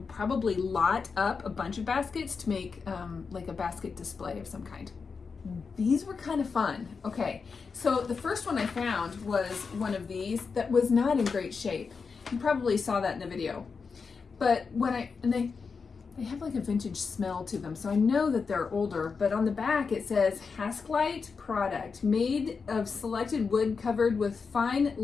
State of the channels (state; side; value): quieter; right; 5.2 dB